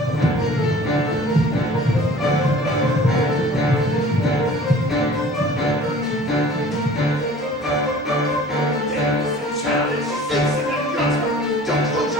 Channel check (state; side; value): normal; both; correlation 0.46